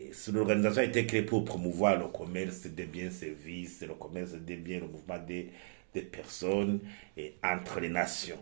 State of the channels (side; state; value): left; silent; digital silence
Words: L'organisation a été créée pour promouvoir le commerce des biens et services, le commerce des biens, le mouvement des personnes et entre les nations.